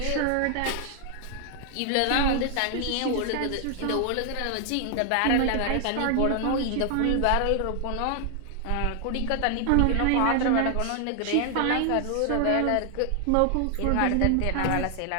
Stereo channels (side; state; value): both; different; correlation 0.00